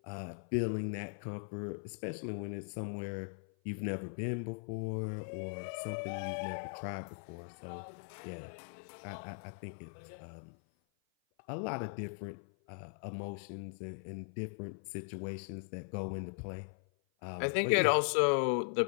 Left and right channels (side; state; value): right; silent; 52 dB below the other